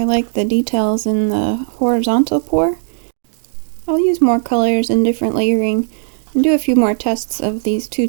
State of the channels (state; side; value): silent; left; digital silence